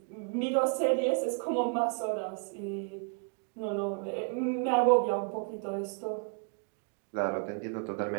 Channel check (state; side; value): quieter; left; 38.8 dB